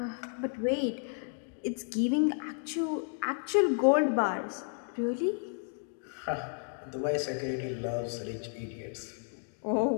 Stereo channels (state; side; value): silent; right; 56 dB below the other